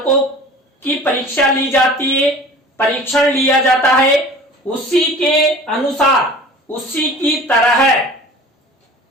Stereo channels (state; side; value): normal; both; correlation 0.42